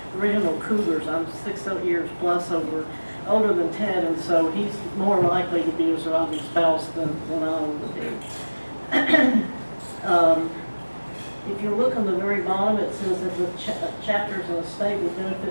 original cougars. I'm 6 years plus older than Ted, and so he's more likely to be a surviving spouse than I would be. If you look on the very bottom, it says that the chapters in a state with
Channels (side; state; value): both; inverted; correlation -1.00